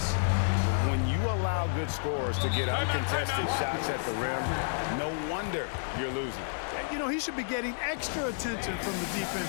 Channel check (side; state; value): right; silent; digital silence